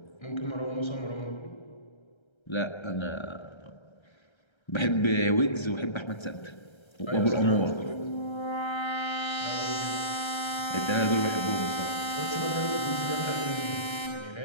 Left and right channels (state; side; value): late; right; 1.3 ms